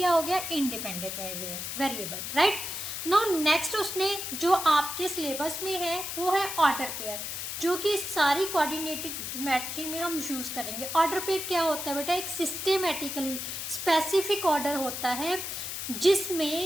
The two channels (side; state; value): left; noise; hiss, 5 dB below the sound